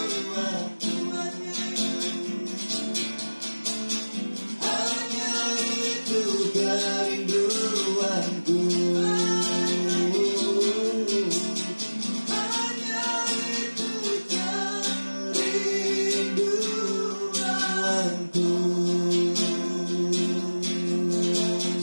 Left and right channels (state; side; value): inverted; both; correlation -1.00